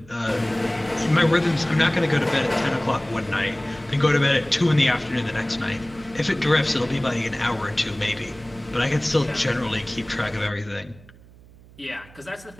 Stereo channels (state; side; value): noise; right; hum, 23 dB below the sound